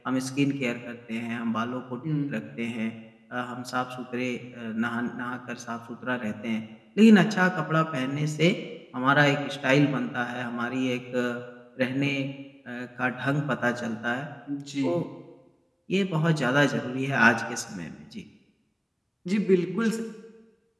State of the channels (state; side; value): identical; both; correlation 1.00